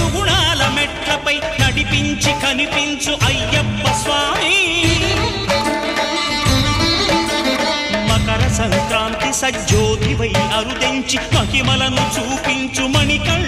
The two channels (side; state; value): both; identical; correlation 1.00